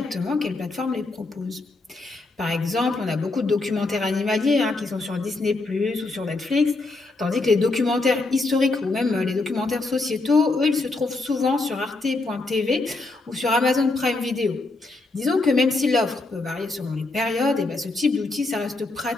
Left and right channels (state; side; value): quieter; right; 3.3 dB